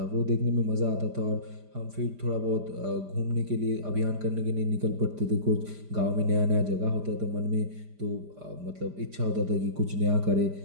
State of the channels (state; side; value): late; left; 5.0 ms